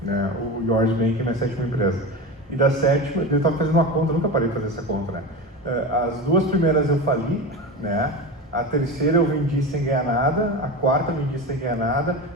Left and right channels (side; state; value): both; normal; correlation 0.25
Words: né? O Yours Bank é a minha 7ª empresa. E da 7ª, eu estava fazendo uma conta, eu nunca parei de fazer essa conta, né? As 2 primeiras eu fali, né? A 3ª eu vendi sem ganhar nada, a 4ª eu vendi sem ganhar nada,